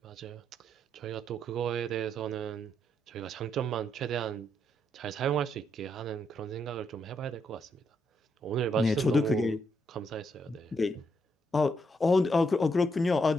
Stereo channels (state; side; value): normal; both; correlation 0.77